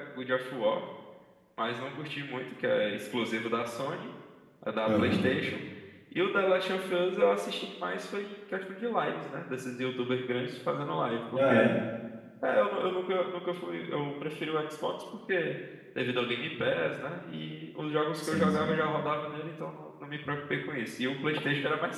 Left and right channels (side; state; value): both; identical; correlation 1.00